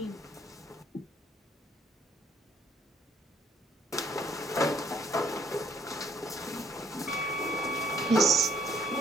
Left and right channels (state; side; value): normal; both; correlation 0.65